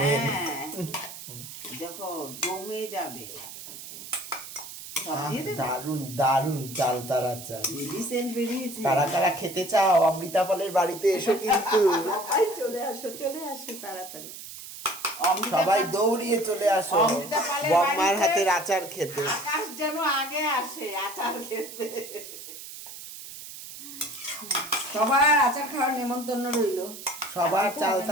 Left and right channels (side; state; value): right; noise; hiss, 12 dB below the sound